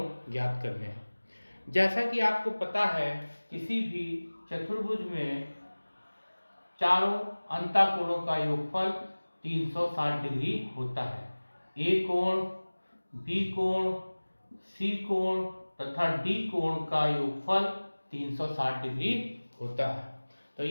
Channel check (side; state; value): both; inverted; correlation -1.00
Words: ज्ञात करने हैं। जैसा कि आपको पता है, किसी भी चतुर्भुज में चारों अंतःकोणों का योगफल 360 डिग्री होता है। ए कोण, बी कोण, सी कोण तथा डी कोण का योगफल 360 डिग्री होता है। तो